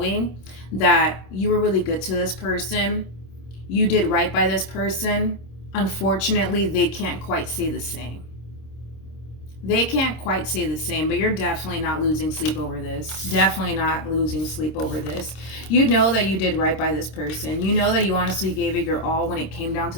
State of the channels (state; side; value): late; right; 26 ms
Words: that you were really good to this person. You did right by this person. Unfortunately, they can't quite say the same. They can't quite say the same, but you're definitely not losing sleep over this. Definitely not losing sleep over this. You know that you did right by this person. You know that you honestly gave it your all when it came down to